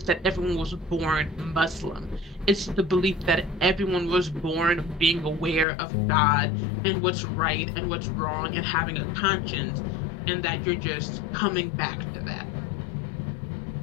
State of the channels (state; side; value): drops out; right; at 5.7 s